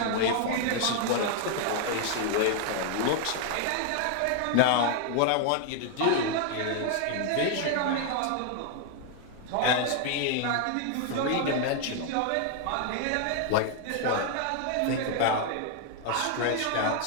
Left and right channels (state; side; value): different; both; correlation 0.00